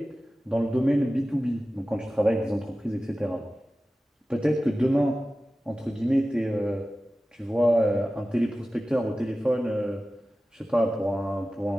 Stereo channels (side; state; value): both; normal; correlation 0.95